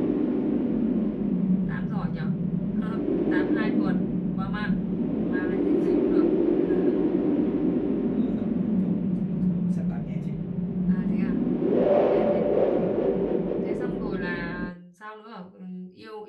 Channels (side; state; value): both; identical; correlation 1.00